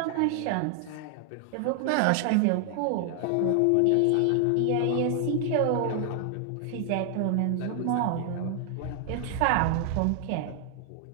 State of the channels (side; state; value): both; different; correlation 0.00